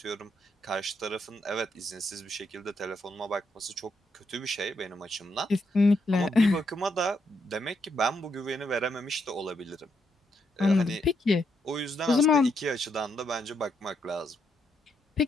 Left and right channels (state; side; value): normal; both; correlation 0.78